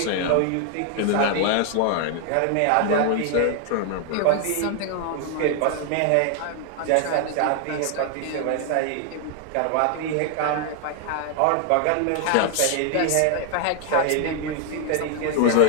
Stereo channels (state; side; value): different; both; correlation 0.00